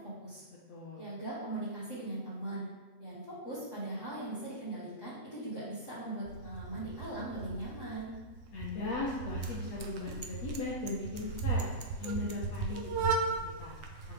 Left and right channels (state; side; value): late; right; 7.7 ms